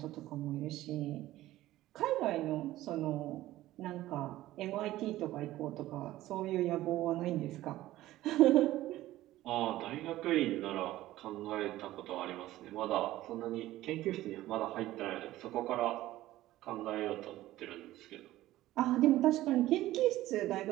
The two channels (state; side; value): quieter; left; 15.6 dB